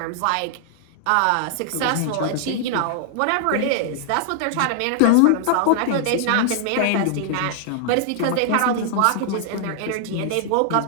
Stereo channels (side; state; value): both; different; correlation 0.00